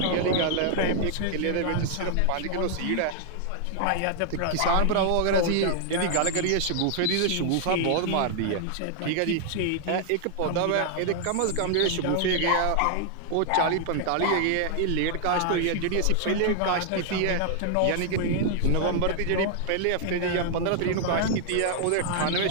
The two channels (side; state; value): both; different; correlation 0.00